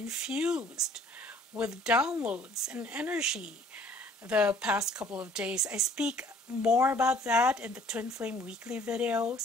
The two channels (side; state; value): both; normal; correlation 0.56